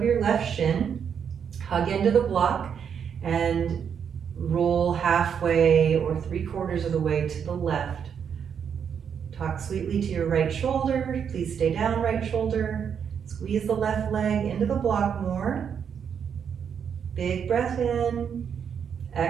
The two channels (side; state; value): left; quieter; 7.5 dB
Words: your left shin. Hug into the block and roll halfway or 3/4 of the way to the left. Talk sweetly to your right shoulder. Please stay down, right shoulder. Squeeze the left leg into the block more. Big breath in.